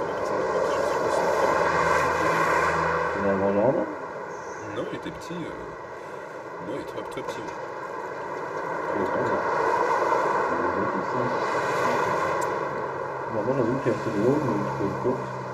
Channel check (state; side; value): identical; both; correlation 1.00